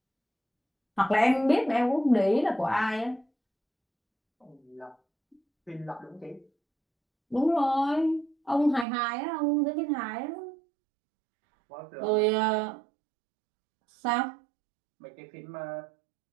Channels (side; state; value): left; drops out; at 8.8 s